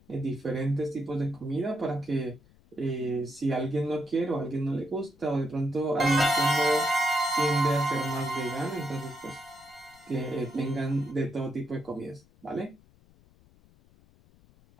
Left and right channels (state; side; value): noise; left; rumble, 28 dB below the sound